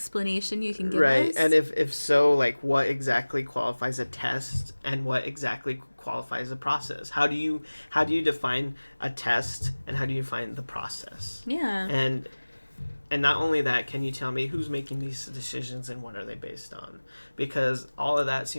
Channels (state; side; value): inverted; both; correlation -1.00